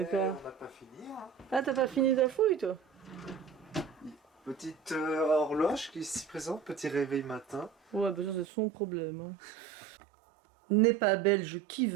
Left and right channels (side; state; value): left; drops out; at 8.5 s